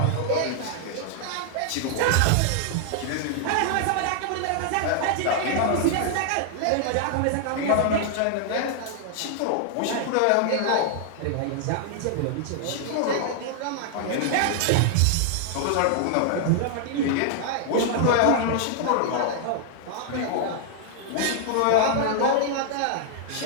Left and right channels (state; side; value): different; both; correlation 0.00